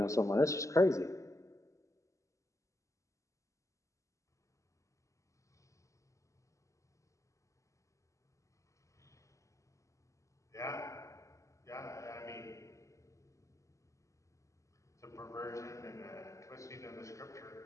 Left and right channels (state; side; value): late; right; 0.15 ms